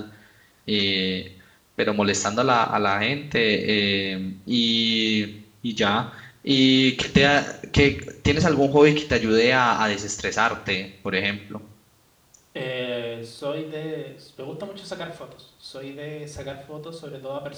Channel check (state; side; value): identical; both; correlation 1.00